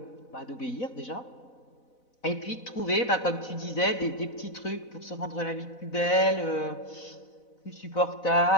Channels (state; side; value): late; right; 4.0 ms